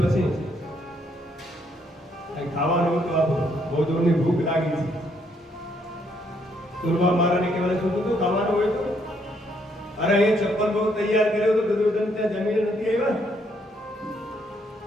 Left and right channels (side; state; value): both; normal; correlation 0.71